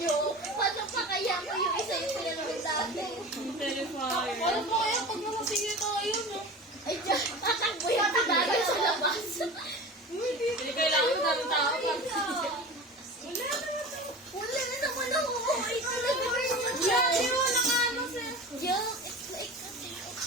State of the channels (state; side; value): normal; both; correlation 0.33